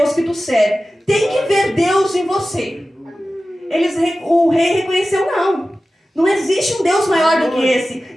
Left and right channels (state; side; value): normal; both; correlation 0.95